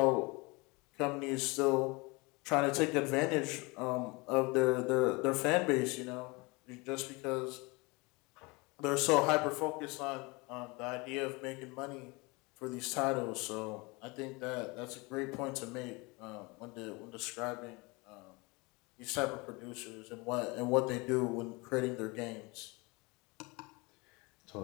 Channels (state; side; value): quieter; right; 26.3 dB